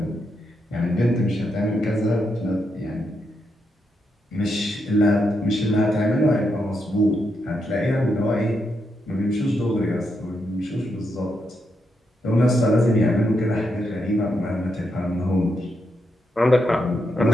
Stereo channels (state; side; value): normal; both; correlation 0.82